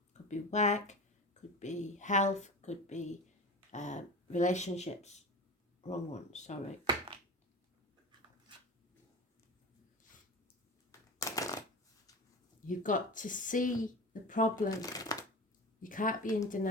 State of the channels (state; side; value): normal; both; correlation 0.30